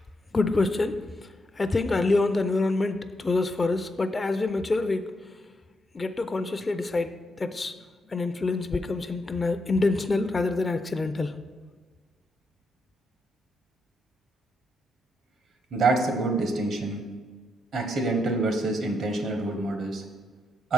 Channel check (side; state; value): both; normal; correlation 0.80